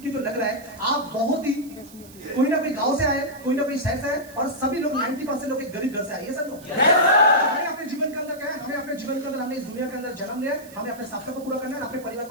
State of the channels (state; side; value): noise; right; hiss, 21 dB below the sound